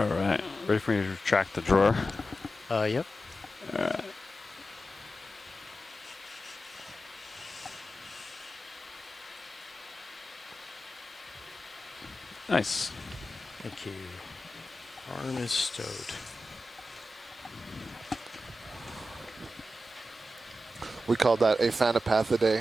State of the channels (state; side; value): normal; both; correlation 0.91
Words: right. Ready for me to retract the drawer? Yep. All right. Nice. Thank you. Arm is stowed. We call that a